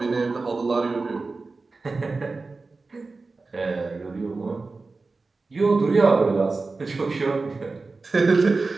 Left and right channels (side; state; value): left; quieter; 3.8 dB